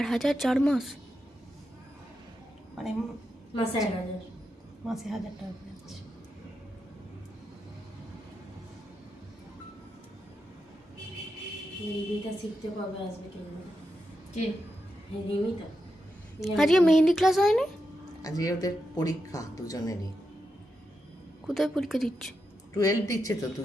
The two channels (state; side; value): normal; both; correlation 0.87